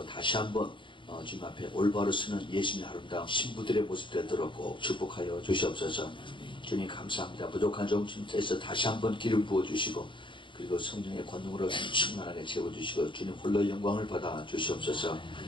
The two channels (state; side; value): late; right; 0.24 ms